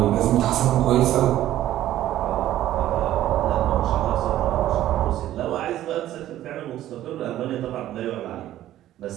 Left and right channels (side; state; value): left; quieter; 13.3 dB